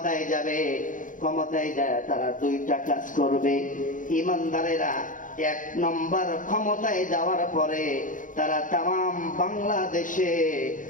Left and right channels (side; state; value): right; late; 0.38 ms